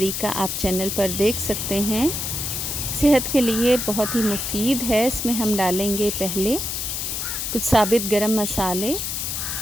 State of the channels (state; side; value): noise; left; hiss, 3 dB below the sound